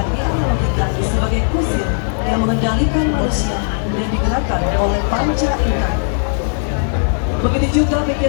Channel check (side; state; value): right; silent; digital silence